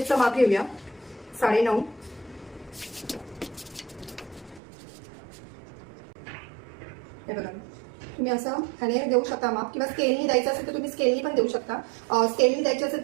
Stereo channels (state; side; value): drops out; left; at 4.6 s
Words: माप घेऊया. 9.5. हे बघा, तुम्ही असं ह्याने देऊ शकता माप, किंवा स्केलनी द्यायचं असेल तर तुम्ही स्केलनी पण देऊ शकता. स्केलनी द्यायचं असेल